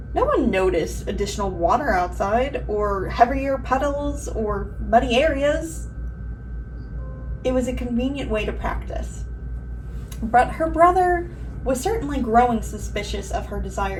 no one noticed additional water outside, or heavier puddles, or muddy areas. It was a convenient way to practice. But her brother was certainly growing suspicious of her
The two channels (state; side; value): identical; both; correlation 1.00